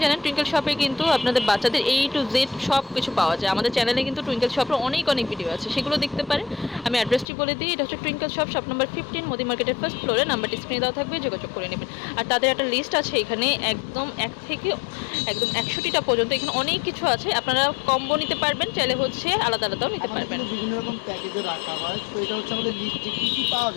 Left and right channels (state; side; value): drops out; right; at 7.2 s